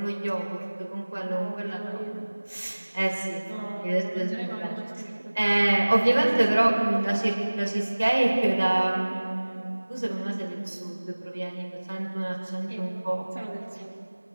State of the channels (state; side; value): inverted; both; correlation -1.00